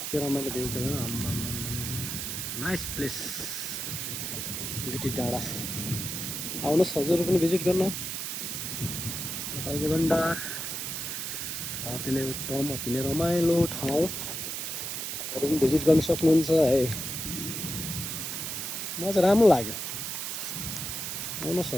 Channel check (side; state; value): right; noise; hiss, 4 dB below the sound